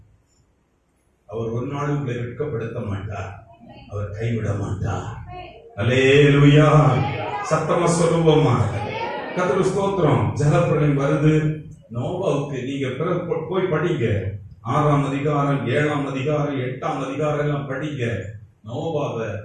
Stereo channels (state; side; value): identical; both; correlation 1.00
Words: அவர் ஒரு நாள் உங்களை வெட்கப்படுத்த மாட்டார், அவர் கைவிட மாட்டார். அல்லேலூயா. சத்தமா சொல்லுவோமா? கர்த்தருக்கு ஸ்தோத்திரம். ஜலப்பிரளயம் வருது. நோவாவுக்கு நீங்க போய் படிங்க, 6ஆம் அதிகாரம், 7ஆம் அதிகாரம், 8ஆம் அதிகாரம் எல்லாம் படிங்க. நோவாவை,